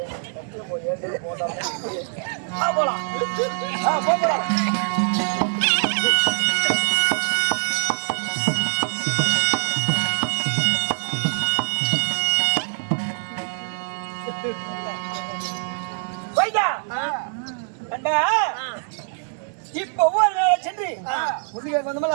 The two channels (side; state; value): left; silent; 63 dB below the other